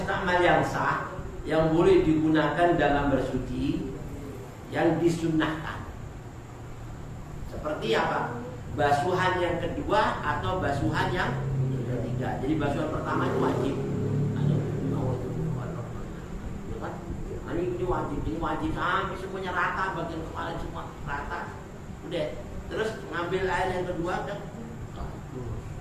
yang sah yang boleh digunakan dalam bersuci yang disunnahkan. Seperti apa? Basuhan yang kedua atau basuhan yang ketiga. Jadi basuhan pertama itu wajib. Ini wajib sampai semuanya rata, bagian kepala semua rata. Udah. Terus ngambil air yang kedua kan.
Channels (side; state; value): both; identical; correlation 1.00